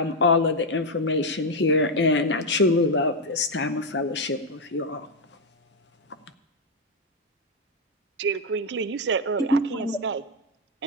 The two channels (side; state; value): both; normal; correlation 0.04